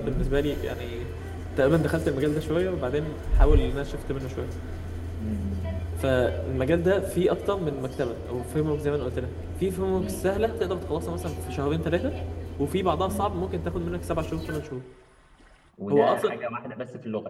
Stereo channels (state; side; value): identical; both; correlation 1.00